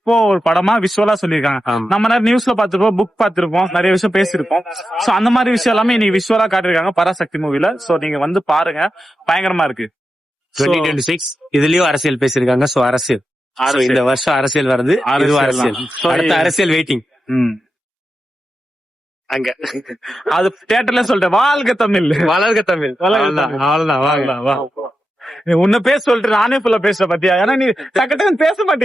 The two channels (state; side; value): normal; both; correlation 0.90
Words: ஒரு படமா விஷுவலா சொல்லியிருக்காங்க. நம்ம நிறைய நியூஸ்ல பாத்துருப்போம், புக் பாத்துருப்போம், நிறைய விஷயம் பேசிருப்போம். சோ அந்த மாதிரி விஷயம் எல்லாமே நீ விஷுவலா காட்டிருக்காங்க பராசக்தி மூவில. சோ நீங்க வந்து பாருங்க, பயங்கரமா இருக்கு. 2026 இதுலயும் அரசியல் பேசிருக்காங்க. சோ அரசியல் இந்த வருஷம் அரசியல் வருது, அரசியல். அடுத்த அரசியல் வெயிட்டிங். அங்க அது தியேட்டர்ல சொல்லிட்டேன், வாழ்க தமிழ், வளர்க தமிழ். அவ்வளவுதான். வா உன்ன பேச சொல்லிட்டு நானே ஃபுல்லா பேசுற பாத்தியா? ஏன்னா நீ டக்குன்னு பேச